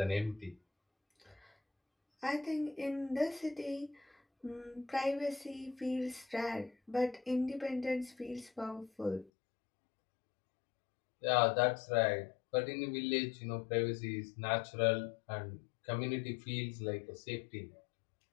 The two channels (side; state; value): right; drops out; at 9.3 s